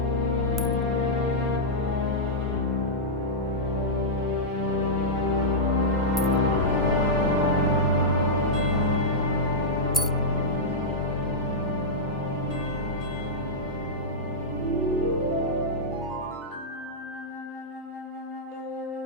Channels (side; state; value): both; normal; correlation -0.08